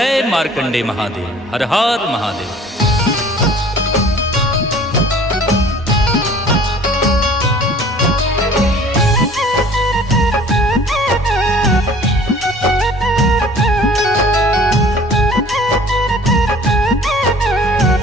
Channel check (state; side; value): normal; both; correlation 0.49